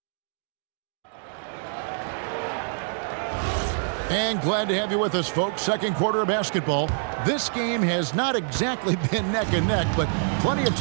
And glad to have you with us, folks. Second quarter of basketball. This game has not exactly been neck and neck, but plenty of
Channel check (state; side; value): silent; left; digital silence